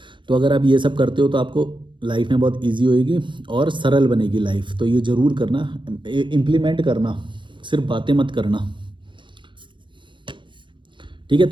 तो अगर आप ये सब करते हो तो आपको लाइफ में बहुत ईजी होएगी और सरल बनेगी लाइफ। तो ये ज़रूर करना, इम्प्लीमेंट करना, सिर्फ बातें मत करना। ठीक है,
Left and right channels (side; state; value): left; late; 0.23 ms